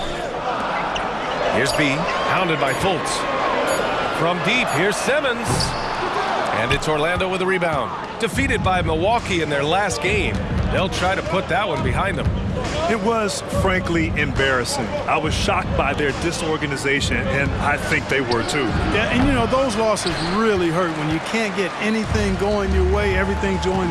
Here's B. Hounded by Fultz. From deep, here's Simmons. And it's Orlando with a rebound. Defeated by Milwaukee in their last game. They'll try to put that one behind them. It was, frankly, embarrassing. I was shocked by their disorganization, and I think they were too. Yeah, and you know, those losses really hurt when you can't get anything going your way, everything's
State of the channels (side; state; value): both; identical; correlation 1.00